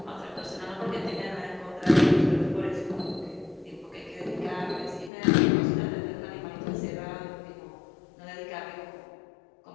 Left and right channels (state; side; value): drops out; right; at 5.1 s